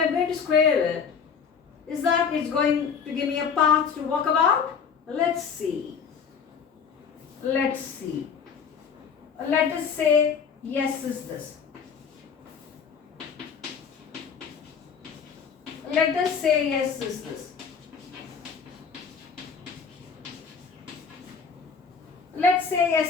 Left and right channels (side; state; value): right; quieter; 6.3 dB